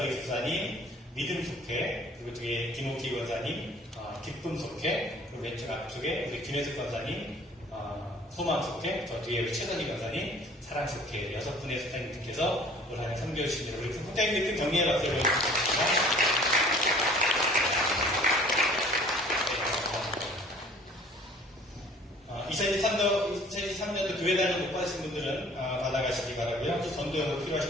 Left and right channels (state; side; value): normal; both; correlation 0.51